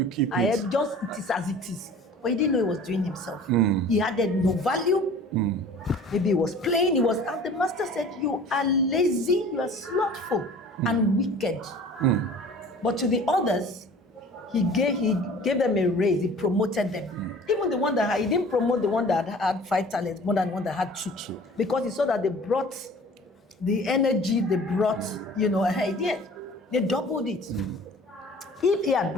keep it. It is as it is. But he didn't know he was doing himself. He added no value. Maybe he was playing, and the master said, you are lazy, you are slothful and wicked. But to the others, he gave them a raise, he promoted them. Even the one that he didn't promote the one that had 5 talents more than the one that had 2. Because he saw that they brought the energy, they brought, they doubled it. If he had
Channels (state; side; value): normal; both; correlation 0.46